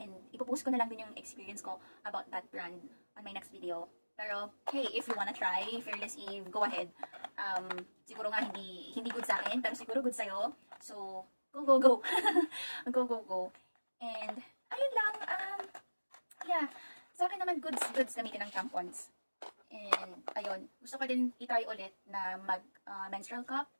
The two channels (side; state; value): both; inverted; correlation -1.00